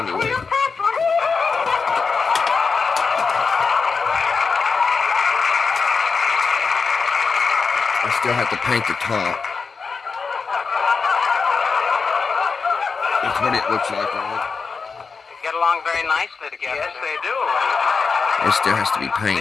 I still have to paint the top. That's what it looks like on it. Get along very nicely together. Yes, they do. It still has to be They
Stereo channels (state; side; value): quieter; right; 5.0 dB